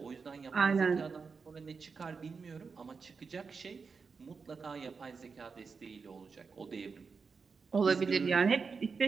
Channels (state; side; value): quieter; left; 5.1 dB